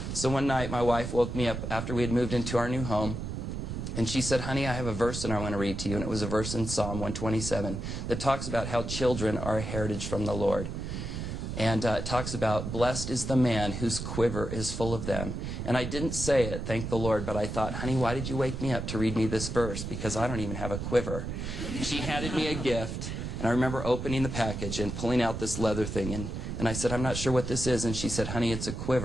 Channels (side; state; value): right; noise; rumble, 5 dB below the sound